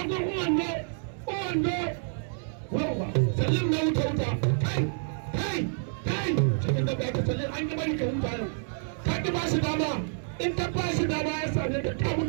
uwando wawa salim na wuta kai cikin da ba ka salim an yi bari ka huta yau ka ki ba shi dama in ka ba shi dama ya same ka ka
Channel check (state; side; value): silent; left; digital silence